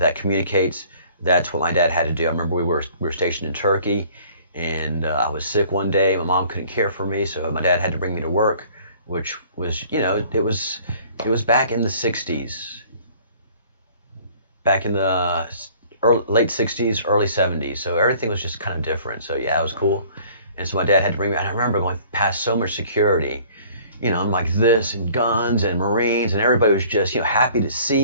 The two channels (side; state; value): both; inverted; correlation -0.53